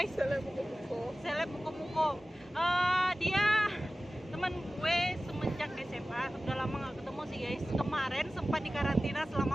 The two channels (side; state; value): both; normal; correlation 0.96